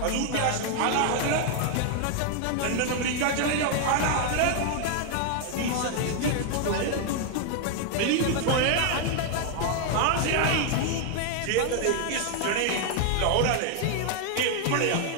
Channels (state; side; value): different; both; correlation 0.00